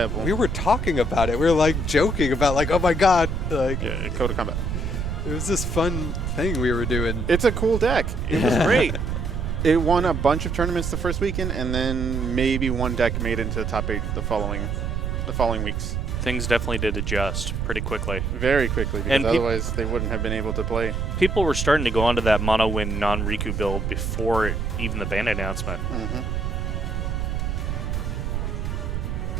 We were talking about it. We were like joking about like, oh my god, like yeah, Code of Combat. It was this fun thing we were doing. It's a cool deck. It was great. It won a bunch of tournaments the first weekend, and then maybe one deck made it into the top 8 the following weeks. Things definitely did adjust pretty quickly. Very quickly, because And otherwise they wouldn't have been able to play. People were starting to go onto that mono win non-Rikku build before even the ban announcement. Mm-hmm.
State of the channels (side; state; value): right; noise; rumble, 2 dB below the sound